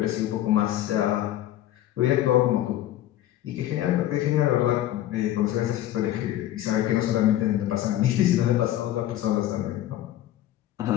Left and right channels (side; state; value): right; quieter; 13.2 dB